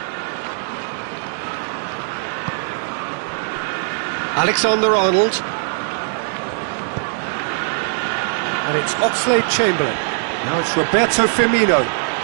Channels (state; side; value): silent; left; 63 dB below the other